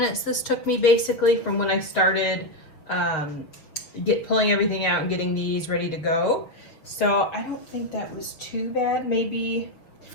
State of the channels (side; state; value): right; late; 6.4 ms